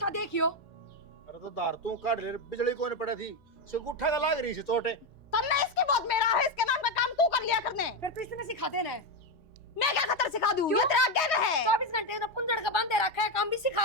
देखियो। अरे तो दार तू काट ले बिजली कोने पड़ा थी से गुट्ठा का लाग रही से चोटे तन्ने इसकी बहुत मेरा है इसके नाम का काम तू कर लिया करने फिर तो इसने सिखा देना है मैं क्या खतर सिखा दूं ये तेरा आगे में है 24 घंटे तो पुंजड़ का बांधे रखा है काम भी सिखा।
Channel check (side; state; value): both; normal; correlation 0.09